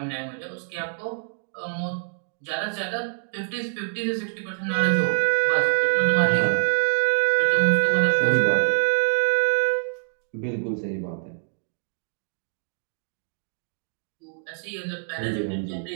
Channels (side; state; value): left; silent; 55 dB below the other